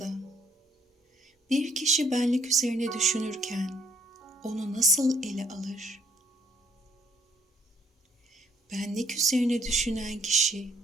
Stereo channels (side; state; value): both; normal; correlation 0.64